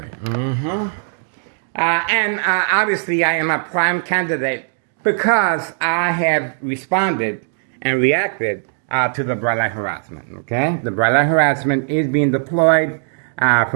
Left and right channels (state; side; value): silent; left; 67 dB below the other